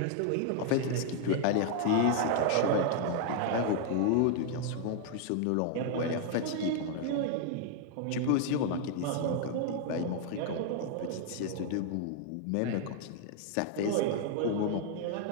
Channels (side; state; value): both; different; correlation 0.00